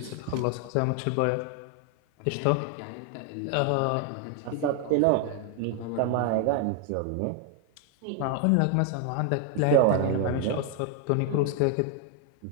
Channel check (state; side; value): different; both; correlation 0.00